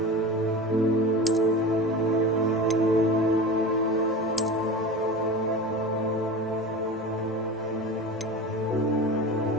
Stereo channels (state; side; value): normal; both; correlation 0.31